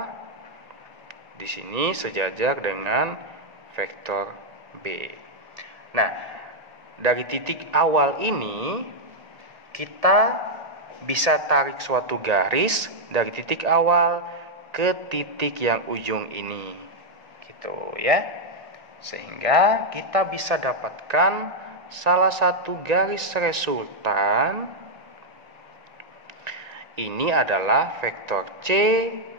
di sini sejajar dengan vektor B. Nah, dari titik awal ini kita bisa tarik suatu garis dari titik awal ke titik yang ujung ini. Gitu ya. Sehingga kita bisa dapatkan salah satu garis resultan. Ini adalah vektor C,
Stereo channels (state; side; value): late; left; 1.9 ms